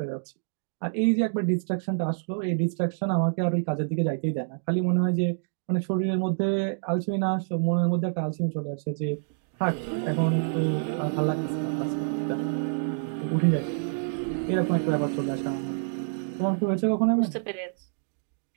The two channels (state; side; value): silent; left; digital silence